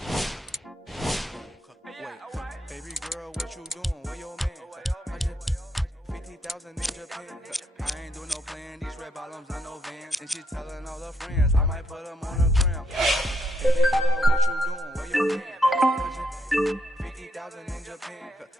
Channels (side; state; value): both; normal; correlation 0.77